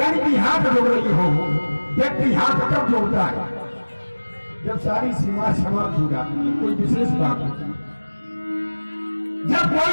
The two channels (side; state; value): both; inverted; correlation -1.00